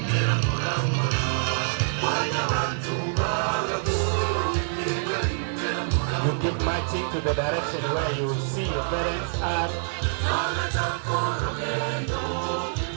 You keep marching to the direction where you see your parents are.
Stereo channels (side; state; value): left; silent; digital silence